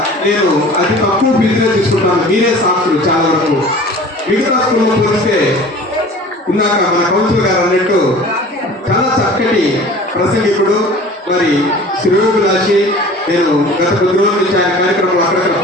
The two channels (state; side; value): normal; both; correlation 0.43